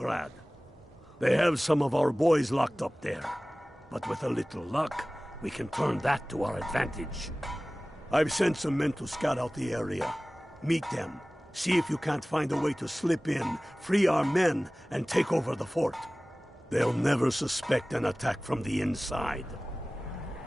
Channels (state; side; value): normal; both; correlation 0.98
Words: They have some of our boys locked up there. But with a little luck, we can turn that to our advantage. I've sent some men to scout out the area. Meet them. See if you can't find a way to slip in, free our men, and take over the fort. They'll never suspect an attack from the inside.